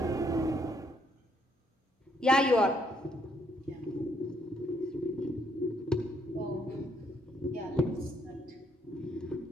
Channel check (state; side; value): normal; both; correlation 0.71